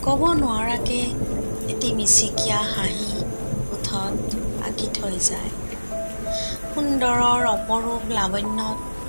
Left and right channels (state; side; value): inverted; both; correlation -1.00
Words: ক'ব নোৱাৰাকে এটি মিচিকীয়া হাঁহি ওঠত আঁকি থৈ যায়। সুন্দৰৰ অপৰূপ লাৱণ্যত